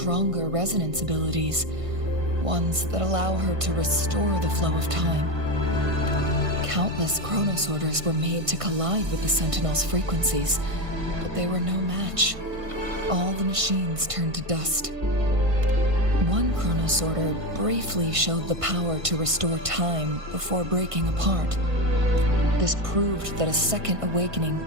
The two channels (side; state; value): left; late; 1.5 ms